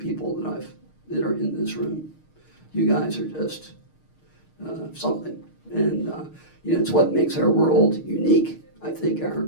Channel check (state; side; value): late; right; 6.5 ms